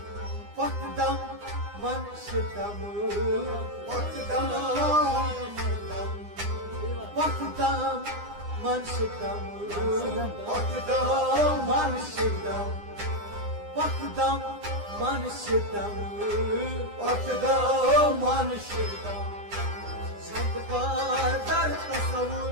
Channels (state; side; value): late; left; 9.8 ms